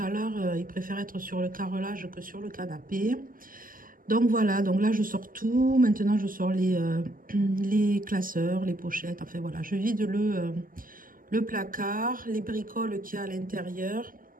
il préfère être sur le carrelage que sur le canapé. Donc voilà, donc là, je sors tout. Maintenant, je sors les classeurs, les pochettes. Enfin voilà, je vide le placard, les bricoles qu'il y a à l'intérieur,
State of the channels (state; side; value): late; left; 0.41 ms